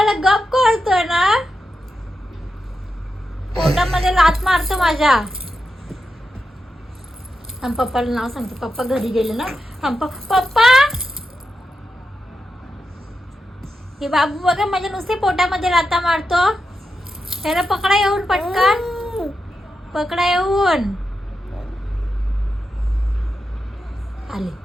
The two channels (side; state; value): both; normal; correlation 0.88